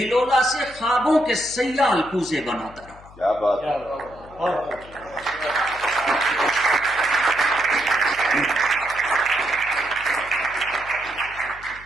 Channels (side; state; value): left; noise; hum, 21 dB below the sound